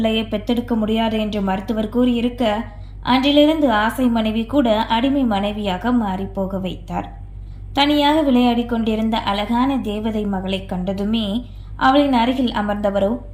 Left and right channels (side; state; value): both; identical; correlation 1.00